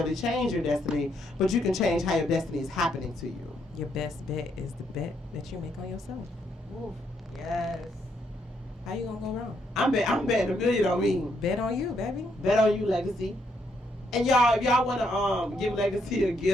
change your destiny, but you can change how your destiny is happening to you. Your best bet is the bet that you make on yourself. Ooh, yes. How you gonna go wrong? I'm betting $1 million on me. Bet on you, baby. Bet on you, Legacy. And y'all, if y'all wanna give Legacy a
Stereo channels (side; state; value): both; normal; correlation 0.75